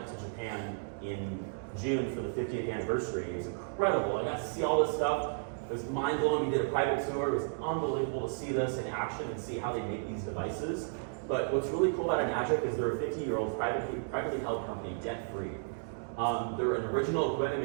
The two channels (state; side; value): silent; left; digital silence